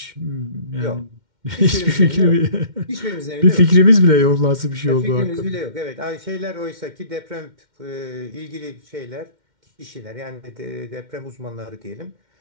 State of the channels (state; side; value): late; left; 2.1 ms